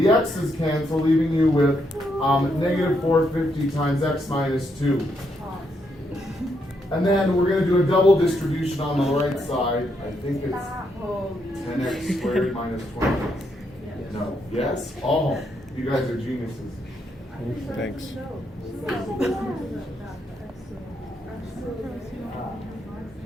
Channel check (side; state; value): both; normal; correlation 0.78